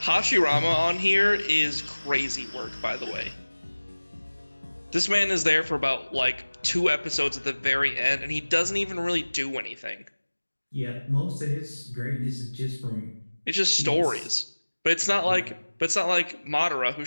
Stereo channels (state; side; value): inverted; both; correlation -1.00